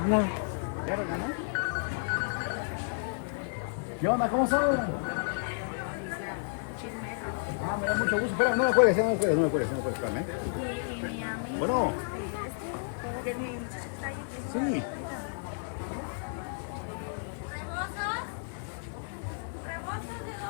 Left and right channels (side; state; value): right; silent; 57 dB below the other